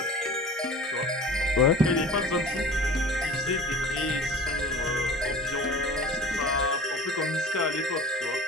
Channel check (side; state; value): both; normal; correlation 0.39